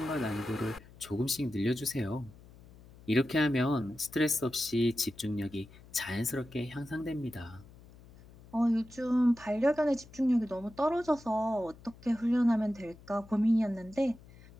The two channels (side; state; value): left; noise; hum, 22 dB below the sound